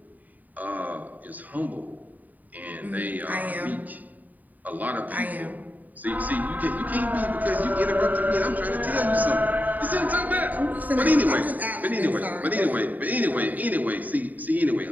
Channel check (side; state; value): left; late; 0.081 ms